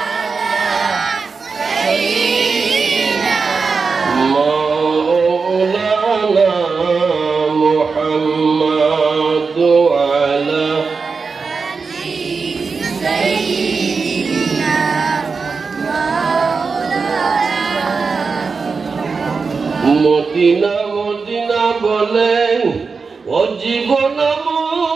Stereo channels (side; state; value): left; quieter; 4.8 dB